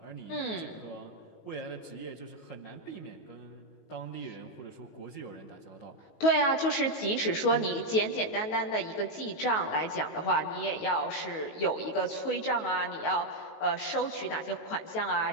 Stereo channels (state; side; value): late; right; 19 ms